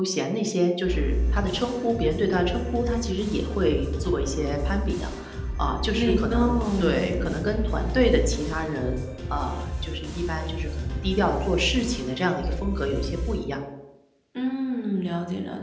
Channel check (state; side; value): identical; both; correlation 1.00